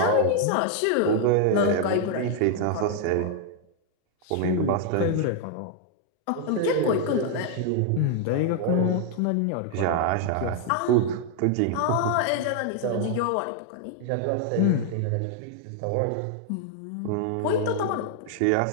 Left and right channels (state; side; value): different; both; correlation 0.00